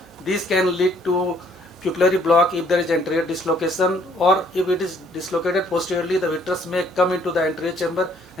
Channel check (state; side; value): normal; both; correlation 0.63